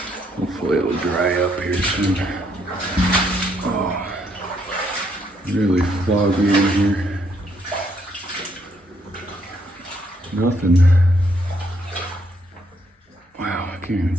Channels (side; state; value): both; normal; correlation 0.72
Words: Hopefully it'll dry up here soon. Oh, really foggy in here. Nothing. Wow, I can't even